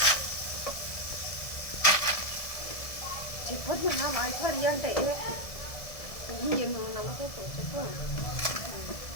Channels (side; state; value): right; late; 1.7 ms